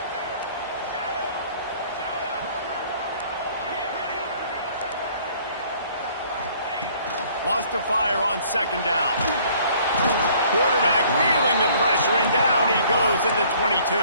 Wants to fire on 2nd down. Quarterback feeling the pressure, and down he goes at the 22.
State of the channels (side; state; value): both; inverted; correlation -0.57